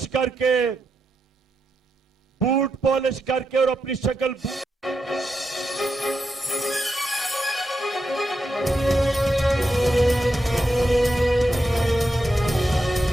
करके और अपनी शक्ल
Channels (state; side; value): normal; both; correlation 0.85